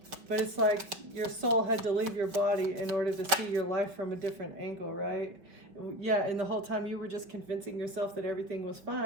But it's like your soul had to leave your body in order to see your life from a different angle, right? Yeah, and the whole time you were just convincing yourself that everything was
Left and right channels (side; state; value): left; late; 5.2 ms